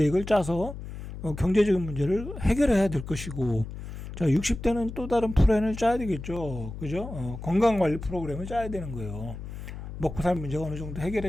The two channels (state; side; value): noise; left; hum, 10 dB below the sound